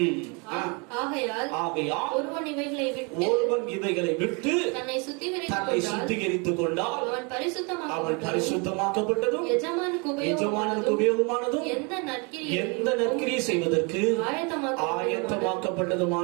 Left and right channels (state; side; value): quieter; left; 32.1 dB